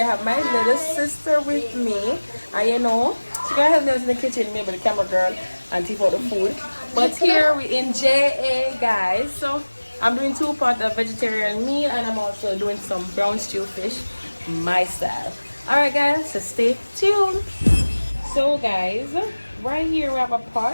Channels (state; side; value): inverted; both; correlation -1.00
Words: I have my little sister with me, and you know she gonna help me in the kitchen, maybe the camera girl, and take out the food. But here we in JA guys, so I'm doing 2 pots of vegetarian meal, and I'm also doing some brown stew fish my style. All right guys, so stay tuned. So guys, right here we have a